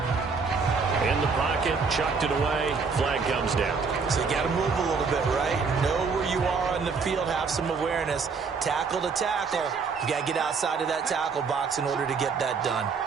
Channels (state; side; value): quieter; left; 5.1 dB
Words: In the pocket, chucked it away. Flag comes down. So you got to move a little bit, right? Know where you are on the field. Have some awareness. Tackle to tackle. You got to get outside of that tackle box in order to get that done.